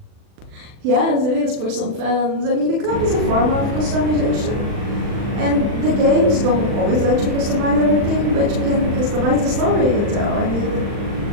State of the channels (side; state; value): left; late; 40 ms